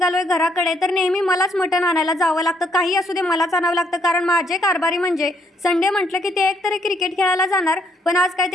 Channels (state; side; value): normal; both; correlation 0.70